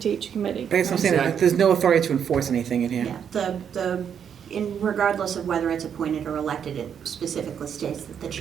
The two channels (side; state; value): left; quieter; 8.1 dB